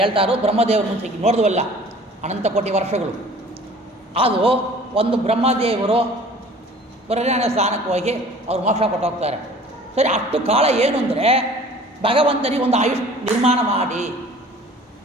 ಇರೋದು ಬ್ರಹ್ಮದೇವರು ಮುಂಚೆ ನೋಡಿದ್ವಲ್ಲ, ಅನಂತ ಕೋಟಿ ವರ್ಷಗಳು. ಅದು ಒಂದು ಬ್ರಹ್ಮದೇವರು ಪುರಜ್ಞಾನ ಸ್ಥಾನಕ್ಕೆ ಹೋಗಿ ಅವ್ರು ಮೋಕ್ಷ ಕೊಟ್ಟು ಹೋಗ್ತಾರೆ. ಸರಿ, ಅಷ್ಟು ಕಾಲ ಏನು ಅಂದರೆ ಭಗವಂತನಿಗೆ ಒಂದು ಆಯುಷ್ ನಿರ್ಮಾಣ ಮಾಡಿ,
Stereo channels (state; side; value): normal; both; correlation 0.48